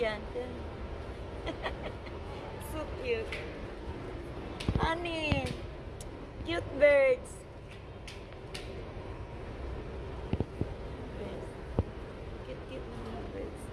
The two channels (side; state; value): both; identical; correlation 1.00